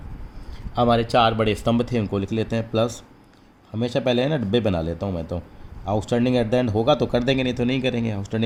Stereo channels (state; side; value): identical; both; correlation 1.00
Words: हमारे 4 बड़े स्तंभ थे उनको लिख लेते हैं प्लस, हमेशा पहले है ना डब्बे बना लेता हूँ मैं तो, आउटस्टैंडिंग एट द एंड होगा तो कर देंगे नहीं तो नहीं करेंगे।